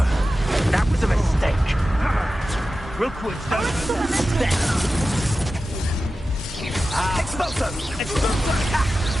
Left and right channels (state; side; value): normal; both; correlation 0.93